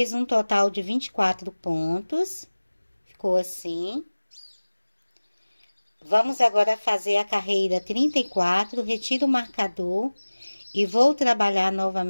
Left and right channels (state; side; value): inverted; both; correlation -1.00